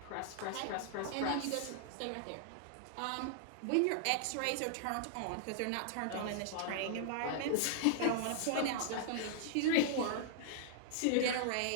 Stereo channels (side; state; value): both; different; correlation -0.01